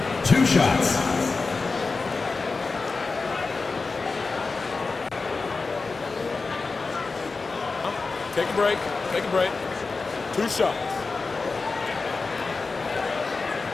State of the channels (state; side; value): quieter; right; 4.1 dB